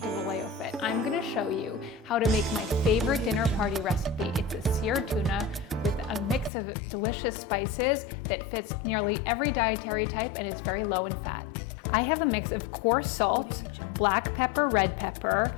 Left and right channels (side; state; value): right; drops out; at 6.5 s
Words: Vallejo Fit. I'm going to show you how to make my favorite dinner party recipe. It's a seared tuna with a mix of delicious spices that fits nearly every dietary type and is very low in fat. I have a mix of coarse salt, black pepper, red pepper,